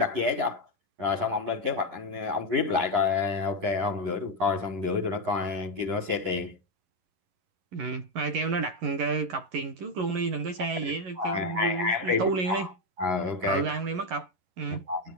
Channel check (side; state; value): left; late; 11 ms